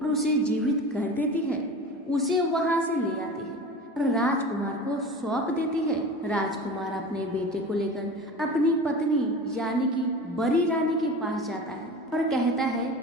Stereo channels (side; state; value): both; normal; correlation 0.34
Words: उसे जीवित कर देती है। उसे वहां से ले आती है। और राजकुमार को सौंप देती है। राजकुमार अपने बेटे को लेकर अपनी पत्नी यानी कि बड़ी रानी के पास जाता है और कहता है